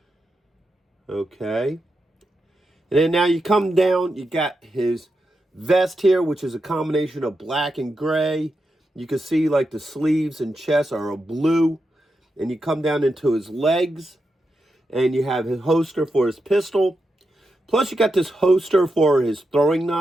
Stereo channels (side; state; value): both; normal; correlation 0.87